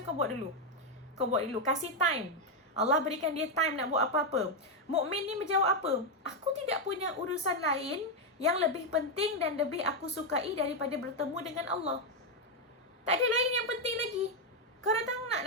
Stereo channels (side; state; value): both; normal; correlation 0.03